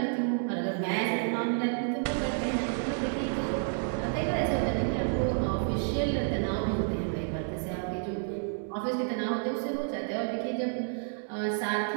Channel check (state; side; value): silent; left; digital silence